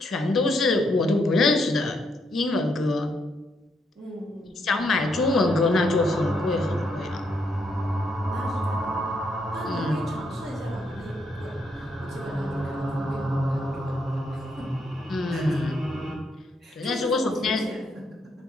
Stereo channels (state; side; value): normal; both; correlation 0.76